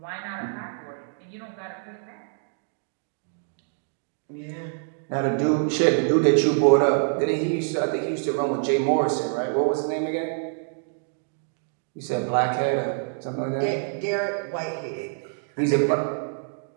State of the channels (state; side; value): silent; left; digital silence